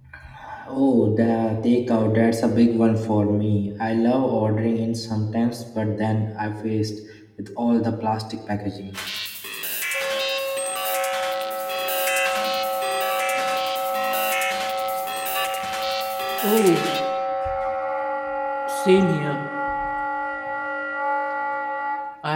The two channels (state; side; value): identical; both; correlation 1.00